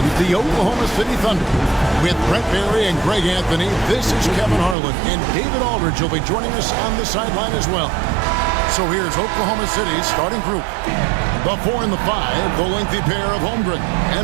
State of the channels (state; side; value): drops out; left; at 4.8 s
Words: the Oklahoma City Thunder. With Brent Barry and Greg Anthony, this is Kevin Harlan, and David Aldridge will be joining us on the sideline as well. So here's Oklahoma City's starting group. The 4 and the 5, the lengthy pair of Holmgren